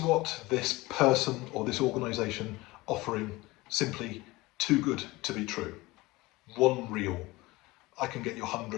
what this person or this organization offering simply too good to be true? One reel, I can get you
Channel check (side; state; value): right; quieter; 20.9 dB